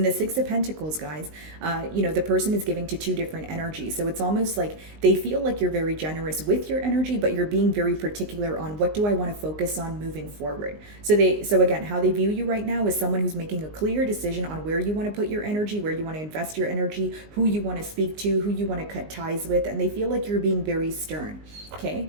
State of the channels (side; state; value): left; late; 19 ms